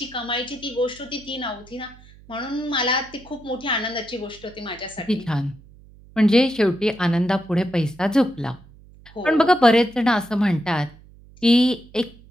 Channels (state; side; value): noise; right; hum, 23 dB below the sound